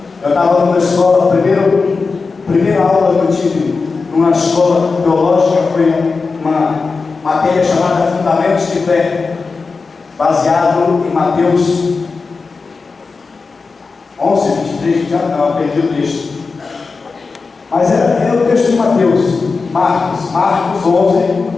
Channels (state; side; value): quieter; right; 4.4 dB